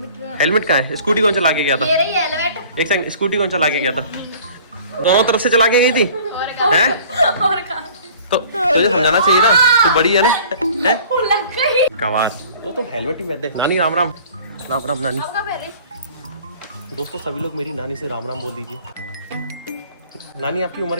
हेलमेट कहाँ है? स्कूटी कौन चला के गया था? ये रही हेलमेट। एक सेकंड, स्कूटी कौन चला के गया था? दोनों तरफ से चला के गई थी हैं? तो तुझे समझाना चाहिए ना, तू बड़ी है ना, है कमाल। वो तो हेलमेट ही पहनते। नानी राम राम। राम राम नानी। दोस्तों सभी लोग मेरी नानी से राम राम बोल दीजिए। नानी आपकी उम्र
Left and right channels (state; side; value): inverted; both; correlation -0.49